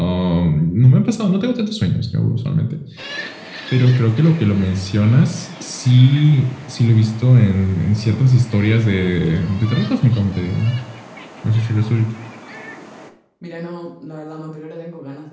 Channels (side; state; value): both; identical; correlation 1.00